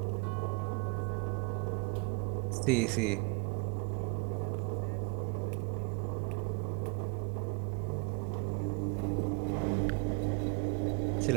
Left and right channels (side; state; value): left; quieter; 32.0 dB